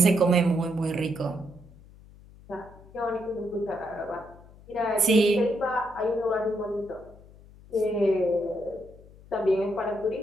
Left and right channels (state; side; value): noise; left; hum, 22 dB below the sound